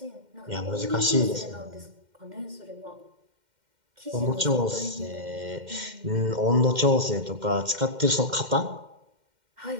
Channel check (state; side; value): late; left; 2.1 ms